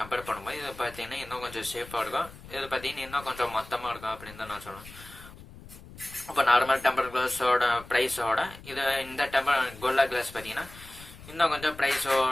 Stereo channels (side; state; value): left; noise; rumble, 18 dB below the sound